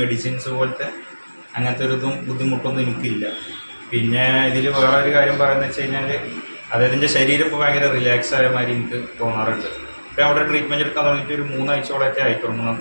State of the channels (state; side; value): inverted; both; correlation -1.00